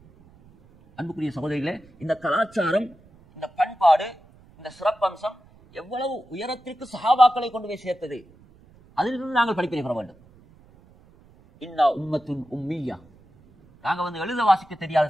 அன்புக்குரிய சகோதரிகளே, இந்த கலாச்சாரம், இந்த பண்பாடு, இந்த சிறப்பம்சம் எவ்வளவு உயரத்திற்கு சஹாபாக்களை கொண்டு போய் சேர்த்தது, அதிலிருந்து நாங்கள் படிப்பினை பெற வேண்டும். இன்னா உம்மத்துன் உம்மியா, நாங்கள் எழுத வாசிக்க தெரியாத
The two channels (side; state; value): right; noise; rumble, 27 dB below the sound